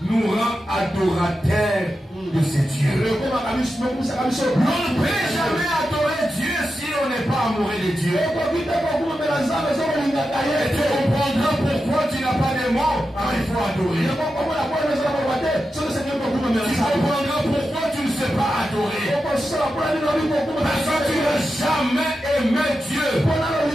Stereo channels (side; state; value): both; normal; correlation 0.90